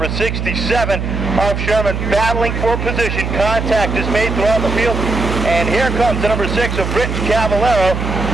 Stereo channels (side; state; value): right; noise; hum, 3 dB below the sound